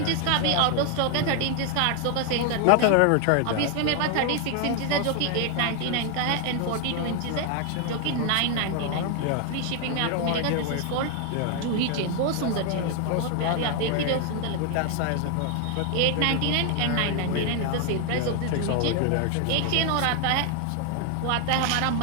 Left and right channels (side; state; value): both; different; correlation 0.00